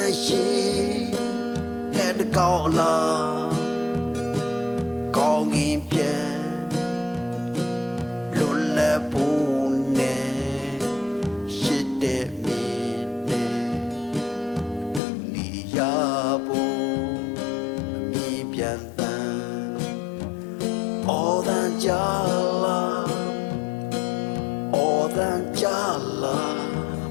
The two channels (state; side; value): drops out; right; at 15.0 s